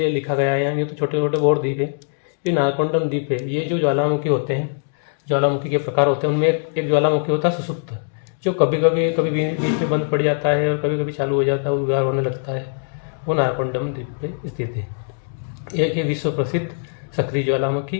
लिखा गया है यहाँ, ये तो छोटे छोटे और द्वीप है। ये नारकोंडम द्वीप है, ये जो ज्वालामुखी होते हैं, ज्वालामुखी के प्रकार होते हैं, उनमें एक ज्वालामुखी होता है सुसुप्त, जो कभी बीच में बंद पड़ जाता है और कभी चालू हो जाता है, उद्गार होने लगता है। वो नारकोंडम द्वीप पे स्थित है। एक है विश्व प्रसिद्ध सक्रिय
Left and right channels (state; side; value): silent; right; digital silence